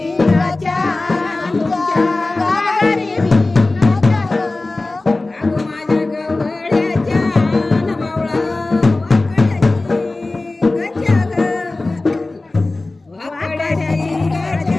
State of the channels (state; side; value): quieter; right; 3.1 dB